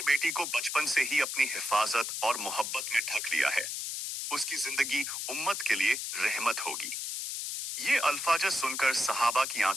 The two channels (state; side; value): noise; left; hiss, 4 dB below the sound